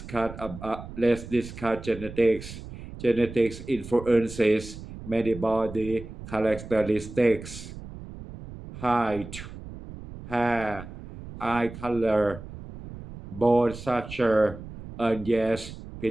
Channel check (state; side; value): noise; right; rumble, 13 dB below the sound